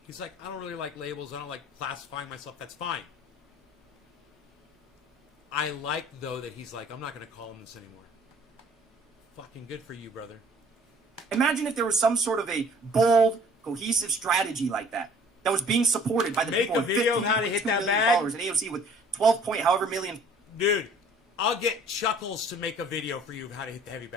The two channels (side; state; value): both; normal; correlation 0.54